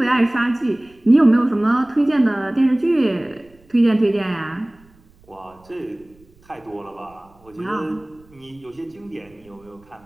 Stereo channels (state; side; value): noise; right; rumble, 29 dB below the sound